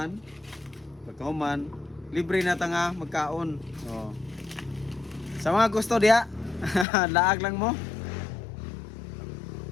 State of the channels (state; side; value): drops out; right; at 6.9 s